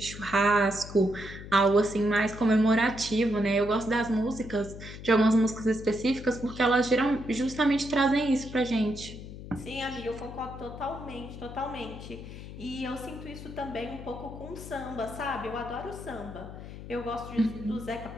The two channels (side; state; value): left; noise; hum, 12 dB below the sound